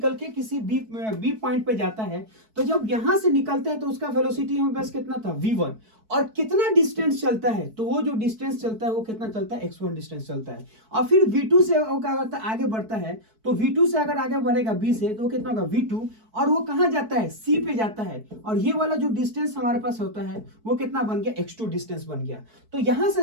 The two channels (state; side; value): late; left; 4.6 ms